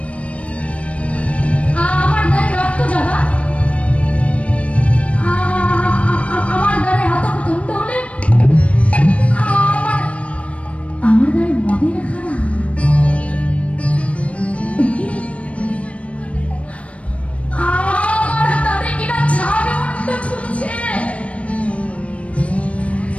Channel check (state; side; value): late; right; 0.063 ms